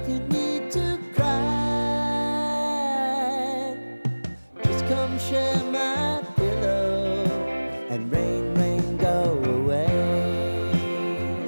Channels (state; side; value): inverted; both; correlation -1.00